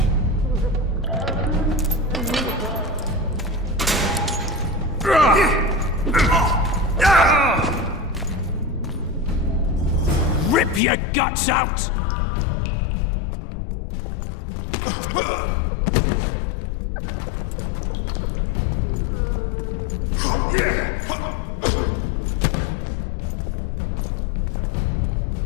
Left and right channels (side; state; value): right; drops out; at 10.8 s